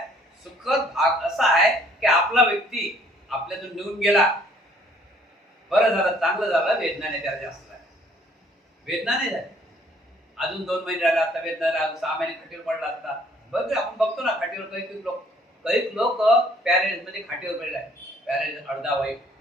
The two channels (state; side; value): normal; both; correlation 0.60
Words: सुखद भाग असा आहे की आपला व्यक्ती आपल्यातून निघून गेला, बरं झालं, चांगलं झालं, वेदना नाही त्याला जास्त झाली. वेदना नाही झाली. अजून 2 महिने राहिले आता वेदना, 6 महिने खटीवर पडला असता. बघ आपण बघतो ना खाटीवर काही लोक पॅरेंट्स मध्ये खाटीवर पडले आहे. पॅरेंट अर्धा वय